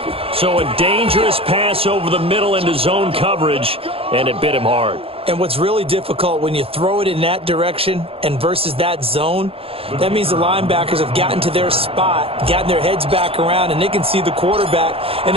So a dangerous pass over the middle into zone coverage, and it bit him hard. And what's really difficult when you throw it in that direction and versus that zone, that means the linebackers have gotten to their spot, gotten their heads back around, and they can see the quarterback and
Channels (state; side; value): late; left; 0.27 ms